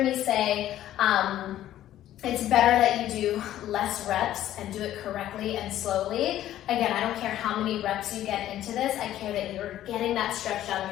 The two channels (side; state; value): right; quieter; 12.8 dB